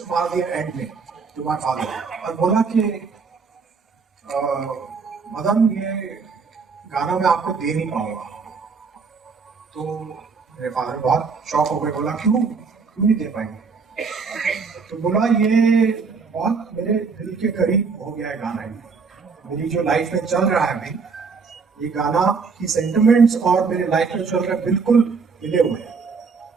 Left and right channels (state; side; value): quieter; left; 5.1 dB